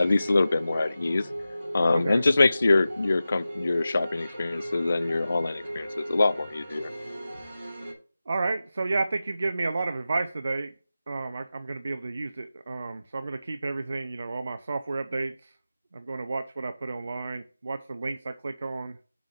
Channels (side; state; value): both; inverted; correlation -0.94